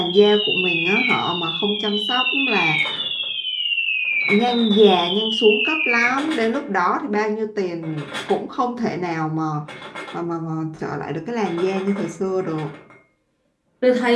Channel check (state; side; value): identical; both; correlation 1.00